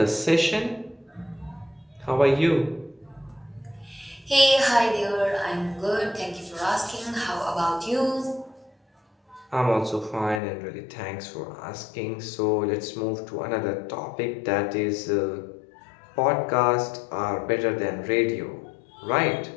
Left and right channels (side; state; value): right; drops out; at 10.4 s